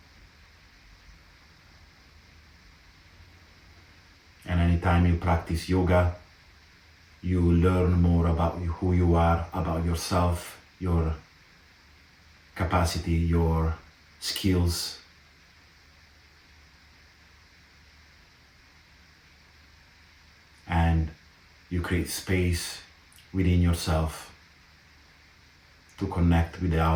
And anytime you practice yoga, you learn more about who you are, about yourself, your capacity, your skills. And you create space within yourself to connect with the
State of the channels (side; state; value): both; identical; correlation 1.00